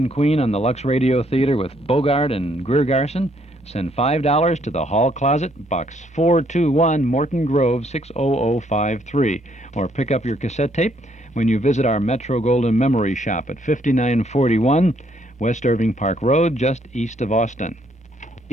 Queen on the Lux Radio Theater with Bogart and Greer Garson, send $5 to the Hall Closet, Box 421, Morton Grove, 60053. Or pick up your cassette tape when you visit our Metro Golden Memory Shop at 5941 West Irving Park Road, just east of Austin.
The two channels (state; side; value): normal; both; correlation 0.69